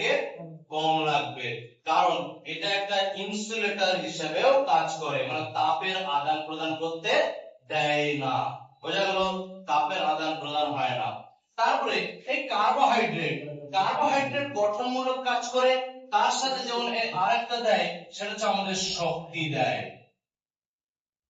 কম লাগবে, কারণ এটা একটা ইনসুলেটর হিসেবেও কাজ করে, মানে তাপের আদান প্রদান করতে দেয় না। বোঝা গেল? তাপের আদান প্রদান হয় না। তারপরে এই কার্বোহাইড্রেট, কার্বোহাইড্রেট গঠনমূলক কাজ করে, তার সাথে যেমন আরেকটা দেয়, সেটা হচ্ছে আমাদের শক্তি দেয়।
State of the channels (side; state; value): both; identical; correlation 1.00